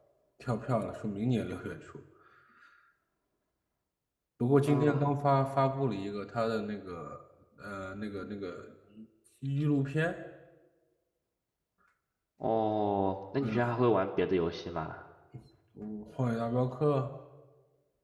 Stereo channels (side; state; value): both; identical; correlation 1.00